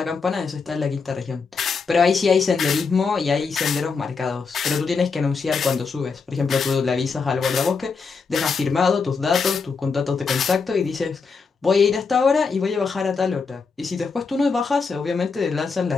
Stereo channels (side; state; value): right; quieter; 5.0 dB